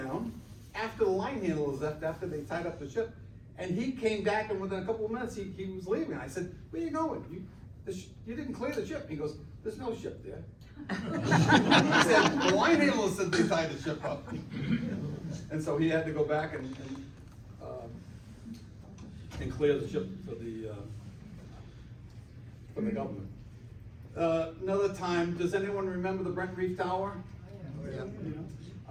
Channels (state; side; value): identical; both; correlation 1.00